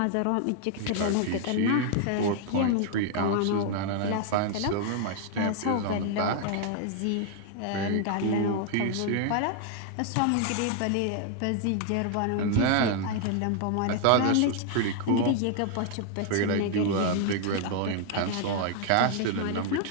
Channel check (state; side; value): different; both; correlation 0.00